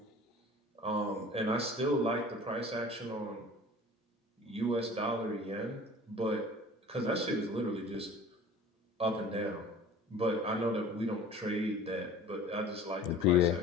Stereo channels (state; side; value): normal; both; correlation 0.43